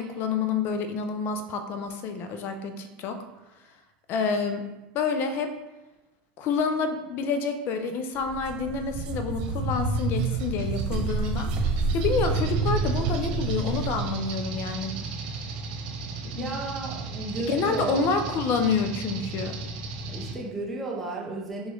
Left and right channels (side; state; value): both; normal; correlation 0.24